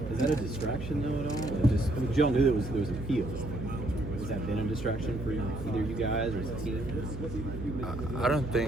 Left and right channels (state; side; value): noise; right; hum, 9 dB below the sound